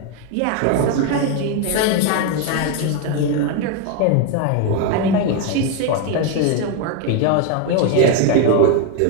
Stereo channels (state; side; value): different; both; correlation 0.01